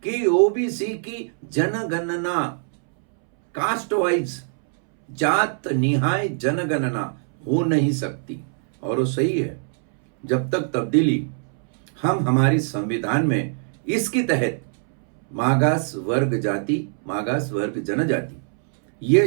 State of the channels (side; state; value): left; silent; 64 dB below the other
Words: कि ओबीसी की जनगणना, कास्ट वाइज, जात निहाय जनगणना हो नहीं सकती। और वो सही है। जब तक तब्दीली हम हमारी संविधान में इसके तहत मागास वर्ग जाति, मागास वर्ग जनजाति ये